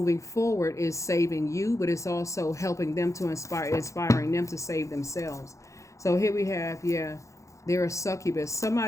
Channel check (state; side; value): late; right; 0.15 ms